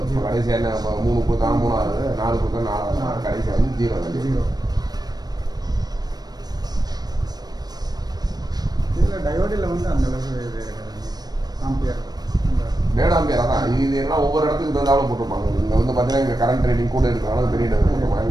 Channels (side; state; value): left; late; 0.19 ms